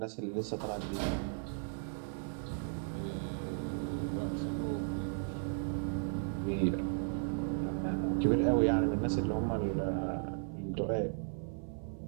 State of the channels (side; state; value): left; silent; 54 dB below the other